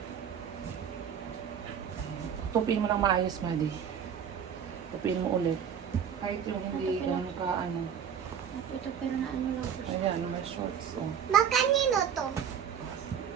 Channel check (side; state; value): left; quieter; 8.0 dB